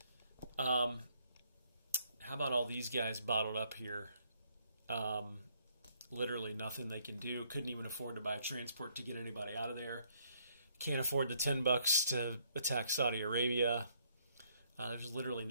how about all these guys bottled up here? Literally nothing they can do. Couldn't even afford to buy a transport to get anybody out of there. Can't afford the $10 to attack Saudi Arabia. There's literally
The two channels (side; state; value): both; inverted; correlation -0.68